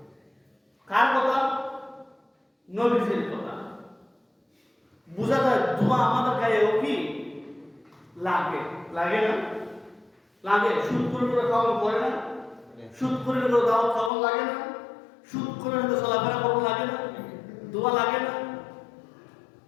কার কথা? নবীজির কথা। বুঝা যায় ধোঁয়া আমাদের গায়েও কি লাগে? লাগে না? লাগে। সুদ করে খাওয়ানো পড়ে না? সুদ করে দাওয়াত খাওয়ানো লাগে না? সুদ করে চলাফেরা করবো লাগে না? ধোঁয়া লাগে না?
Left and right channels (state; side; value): drops out; right; at 14.1 s